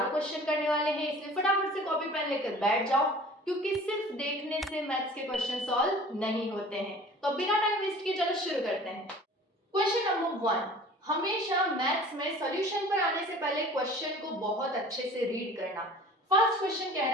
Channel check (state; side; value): normal; both; correlation 0.45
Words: क्वेश्चन करने वाले हैं, इसलिए फटाफट से कॉपी पेन लेकर बैठ जाओ क्योंकि सिर्फ देखने से मैथ्स के क्वेश्चन सॉल्व नहीं होते हैं। तो बिना टाइम वेस्ट किए चलो शुरू करते हैं। क्वेश्चन नंबर 1, हमेशा मैथ्स में सॉल्यूशन पर आने से पहले क्वेश्चन को बहुत अच्छे से रीड करना। फर्स्ट क्वेश्चन कह